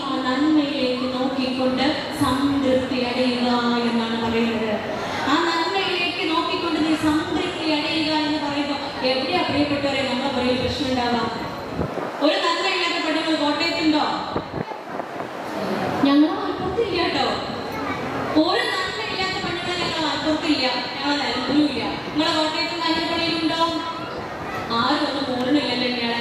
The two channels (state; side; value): identical; both; correlation 1.00